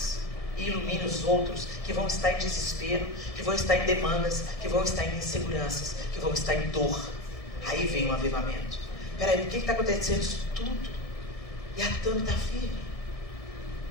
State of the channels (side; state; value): right; late; 1.6 ms